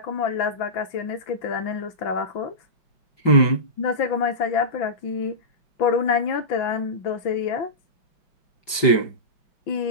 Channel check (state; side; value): late; right; 5.1 ms